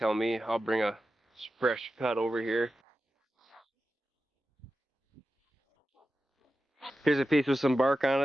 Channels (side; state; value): both; normal; correlation 0.92